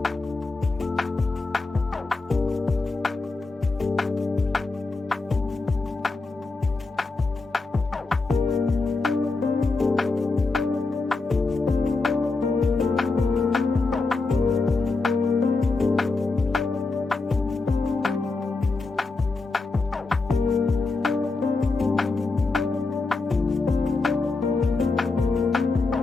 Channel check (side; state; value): right; quieter; 3.7 dB